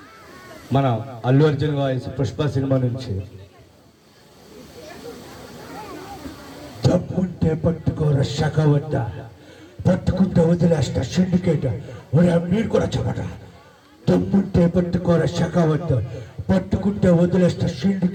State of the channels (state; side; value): identical; both; correlation 1.00